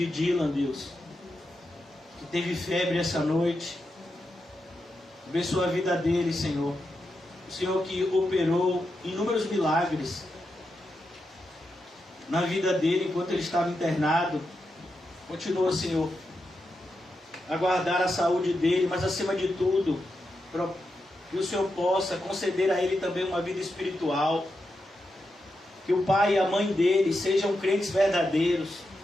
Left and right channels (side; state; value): both; normal; correlation 0.87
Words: Dylan, Deus, que teve febre essa noite. Abençoa a vida dele, Senhor. O Senhor que operou inúmeros milagres na vida dele enquanto ele estava internado. Continua, Senhor, a guardar a saúde dele, mas acima de tudo, que o Senhor possa conceder a ele também uma vida espiritual. Que o pai e a mãe dele sejam crentes verdadeiros